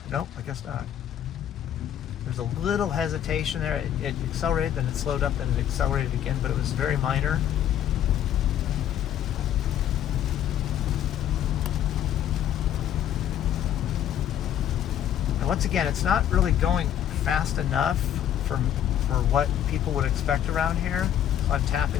Nope, I guess not. There's a little hesitation there. It accelerated, then it slowed up, then it accelerated again, but it was very minor. And once again, it's not really going fast enough for what people would expect around here. So I'm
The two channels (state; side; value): quieter; right; 10.5 dB